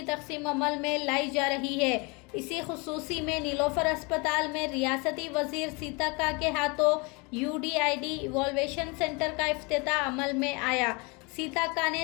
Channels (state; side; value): quieter; right; 29.2 dB